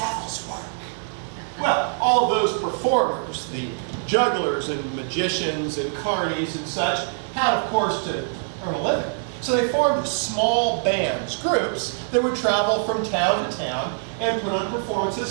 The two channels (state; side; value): silent; left; digital silence